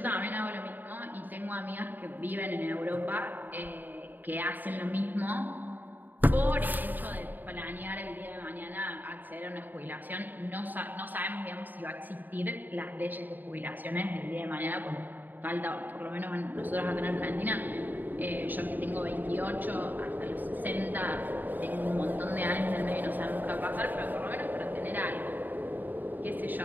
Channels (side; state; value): left; late; 0.089 ms